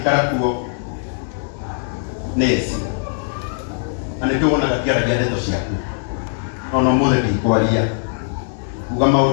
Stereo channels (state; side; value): silent; right; digital silence